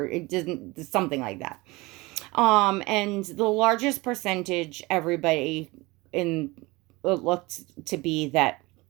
it doesn't, something like that. And the largest percentage, everybody in it looked to be that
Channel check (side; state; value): left; quieter; 22.8 dB